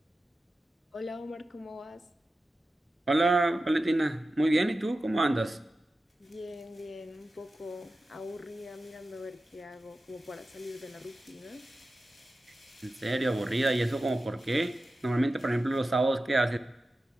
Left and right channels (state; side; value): normal; both; correlation 0.94